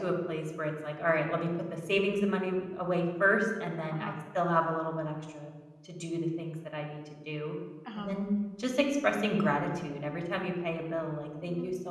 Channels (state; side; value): identical; both; correlation 1.00